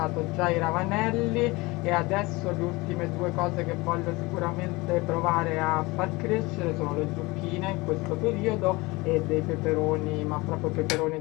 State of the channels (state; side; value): quieter; right; 23.0 dB